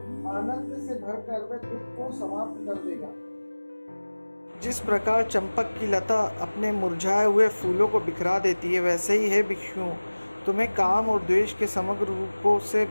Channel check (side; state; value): both; inverted; correlation -1.00